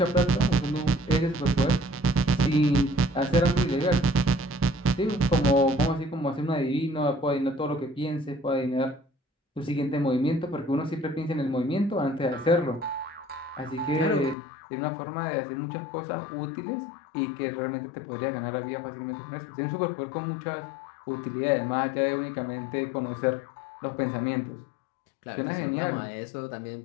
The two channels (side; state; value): right; drops out; at 14.4 s